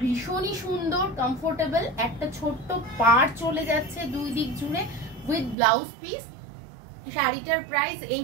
ভীষণই সুন্দর কমফোর্টেবল, একটা ছোট্ট পাড় চলে যাচ্ছে দুই দিক জুড়ে উইথ ব্লাউজ পিস। শাড়িটার প্রাইস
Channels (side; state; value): left; drops out; at 5.6 s